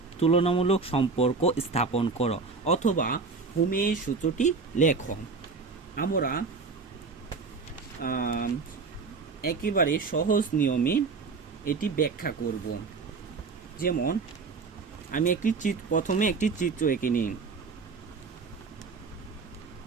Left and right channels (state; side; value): quieter; left; 4.5 dB